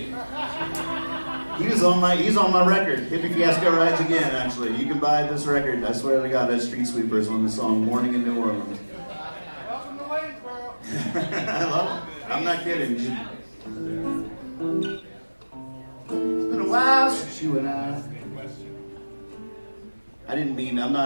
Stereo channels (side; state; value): both; inverted; correlation -1.00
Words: He's on my record. Hippie Fiasco Rides Again, actually. You can buy this record. I swear to God, that's Street Sweepers on the song Morning in New Orleans. Welcome to Waynesboro. I love it. I'm not kidding. It's been a while since you and I didn't mean, I'm